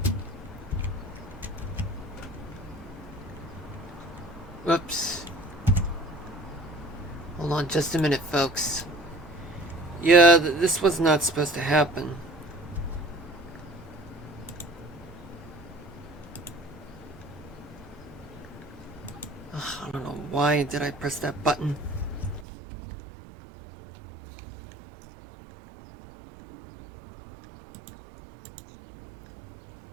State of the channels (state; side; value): drops out; left; at 22.5 s